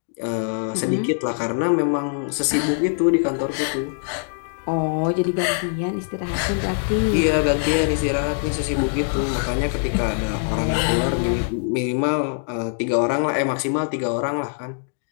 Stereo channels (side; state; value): right; silent; digital silence